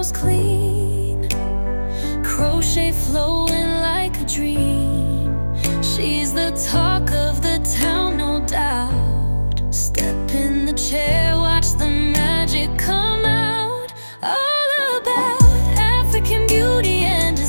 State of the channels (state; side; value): inverted; both; correlation -1.00